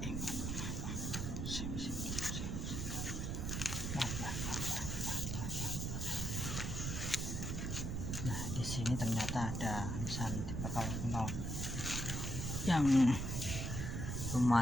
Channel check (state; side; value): noise; right; rumble, 2 dB below the sound